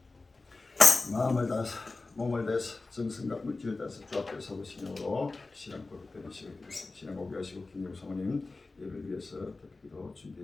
마음을 다해서 몸을 다해서 정성과 물질을 다해서 주 앞에 서보시므로 신앙 고백되는 시간 되겠습니다. 신앙 고백하시고 김용 사모님 예배를 위해서 기도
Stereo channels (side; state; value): right; quieter; 3.5 dB